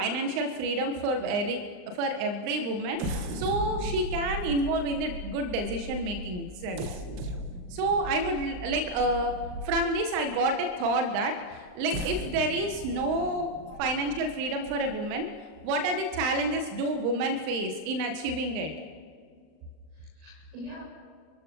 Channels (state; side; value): late; left; 39 ms